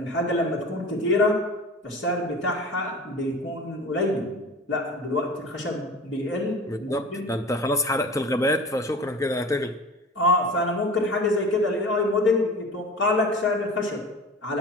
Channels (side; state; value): both; normal; correlation 0.37